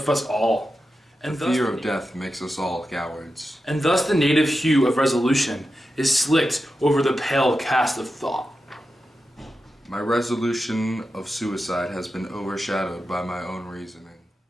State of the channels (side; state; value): both; normal; correlation 0.91